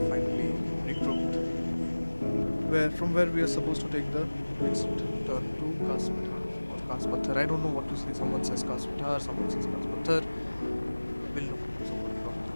finally regrouped, where we are supposed to take the next turn to Kaspathar or Kaspathar. I don't know what to say. Someone says Kaspathar, someone says Kaspathar. We'll know. Someone drop in the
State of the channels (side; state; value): both; inverted; correlation -1.00